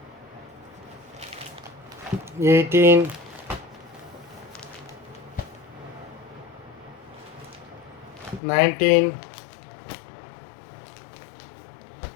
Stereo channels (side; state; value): right; drops out; at 8.4 s